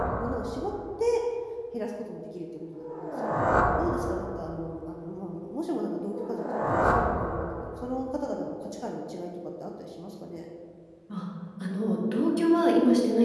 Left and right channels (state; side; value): identical; both; correlation 1.00